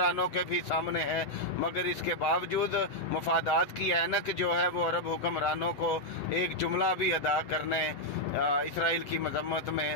کے بھی سامنے ہے, مگر اس کے باوجود مفادات کی اینک جو ہے وہ عرب حکمرانوں کو ایک جملہ بھی ادا کرنے اسرائیل کی مذمت میں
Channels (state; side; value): late; right; 8.2 ms